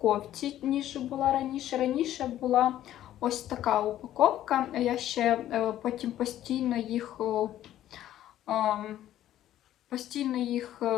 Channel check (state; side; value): quieter; right; 12.6 dB